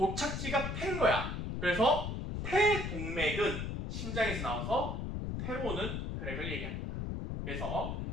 폐인 거야. 그래서 폐동맥은 심장에서 나와서 폐로 오는 혈액을 얘기합니다. 그래서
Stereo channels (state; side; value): noise; left; rumble, 3 dB below the sound